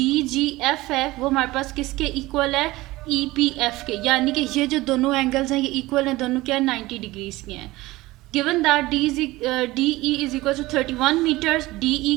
जी एफ है वो हमारे पास किसके इक्वल है, ई पी एफ के। यानी कि ये जो दोनों एंगल्स हैं ये इक्वल हैं, दोनों क्या 90 डिग्रीज के हैं। Given that D E is equal to 31 metres, D E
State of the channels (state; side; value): quieter; left; 19.3 dB